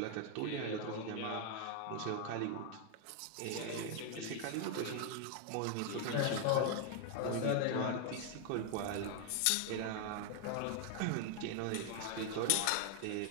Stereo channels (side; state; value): both; different; correlation 0.00